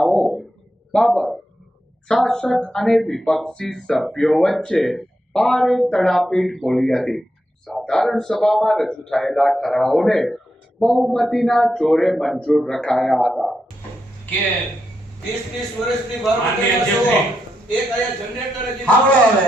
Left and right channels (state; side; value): normal; both; correlation 0.84